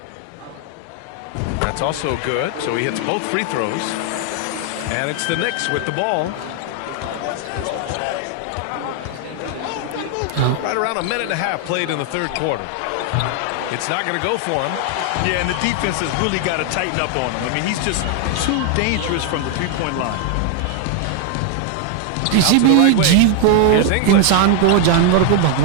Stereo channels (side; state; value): both; different; correlation 0.00